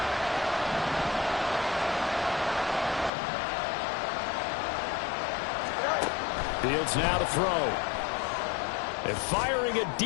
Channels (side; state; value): right; drops out; at 3.1 s